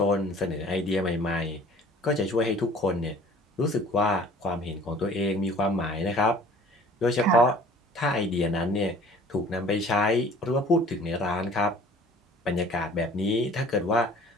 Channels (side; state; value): both; normal; correlation 0.50